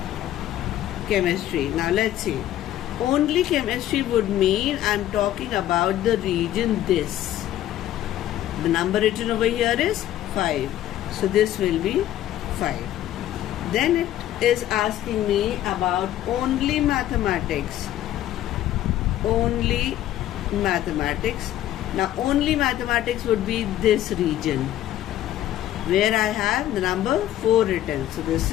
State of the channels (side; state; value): right; quieter; 12.9 dB